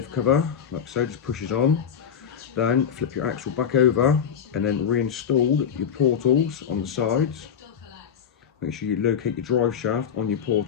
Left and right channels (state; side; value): quieter; right; 7.9 dB